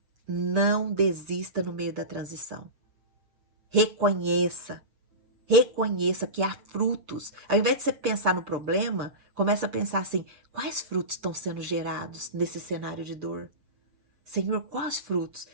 não desista no meio da transição. Reconheça que há frutos. Ao invés de você pensar no problema, começa a pensar assim, quais frutos estão sendo gerados nesse cenário de dor? Senhor, quais frutos?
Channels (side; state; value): left; late; 7.0 ms